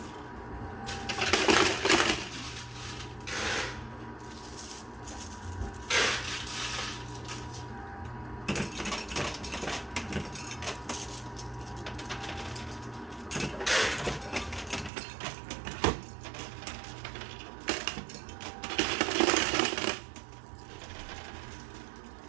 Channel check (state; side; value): drops out; left; at 14.9 s